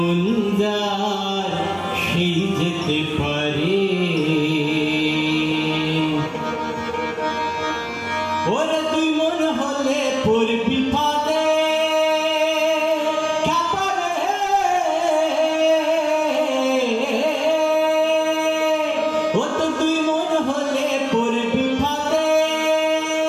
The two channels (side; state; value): both; identical; correlation 1.00